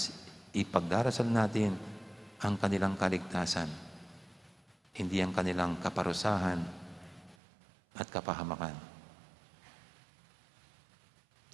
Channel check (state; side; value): drops out; left; at 7.4 s